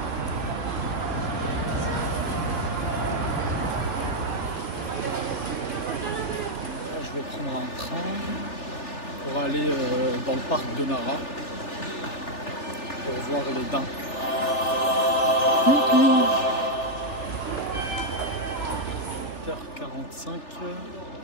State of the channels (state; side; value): late; right; 3.4 ms